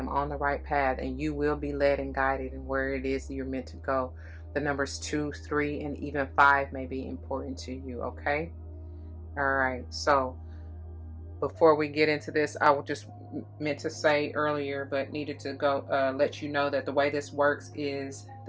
on the right path, and you will be led and guided in where it is you're meant to go. The numbers 2, 3, and even 5 may be important to you. Okay. All right. So before we get into this, I will just meant to say earlier, but needed to go let you know that the way this works is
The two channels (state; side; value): identical; both; correlation 1.00